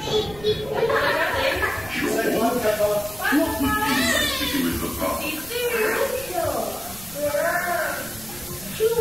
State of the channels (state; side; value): noise; right; rumble, 18 dB below the sound